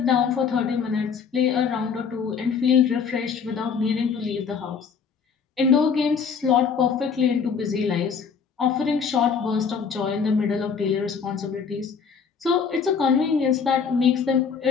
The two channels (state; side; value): quieter; right; 6.2 dB